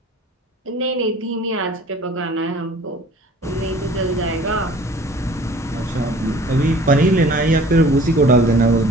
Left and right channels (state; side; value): normal; both; correlation 0.49